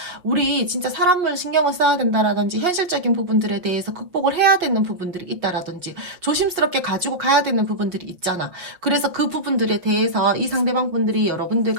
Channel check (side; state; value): left; late; 5.6 ms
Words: 우리 진짜 사람을 신경을 써야 된다라든지 현실적인 부분들에 대해서 극복을 해야 되는 부분들이 있다라든지 조심스럽게 가지고 가야 되는 부분들이 있잖아. 그래서 그 부분들에 대해서 이 상대방 분들이